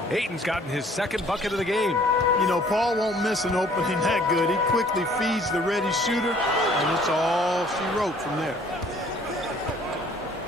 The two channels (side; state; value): both; normal; correlation 0.57